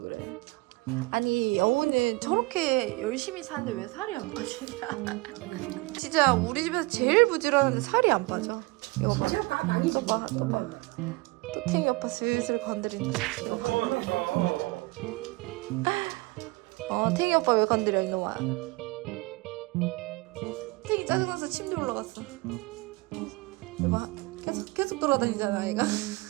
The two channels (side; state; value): left; quieter; 24.4 dB